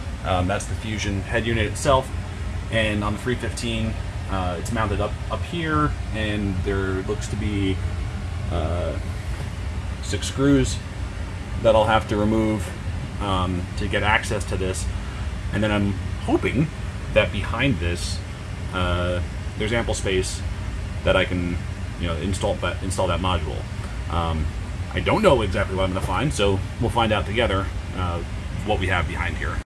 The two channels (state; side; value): identical; both; correlation 1.00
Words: that's the Fusion head unit itself. And on the 315, it's mounted up here, and there looks to be 6 screws that I'll have to remove to get access to this. And then I'm hoping that behind this, there's ample space that I can, you know, install that module. I don't know exactly what I'm going to find, so we'll find out together what we have behind here.